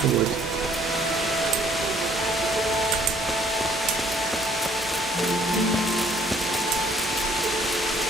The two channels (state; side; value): normal; both; correlation 0.61